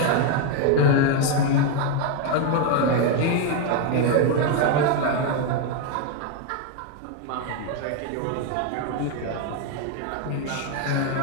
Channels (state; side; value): different; both; correlation 0.01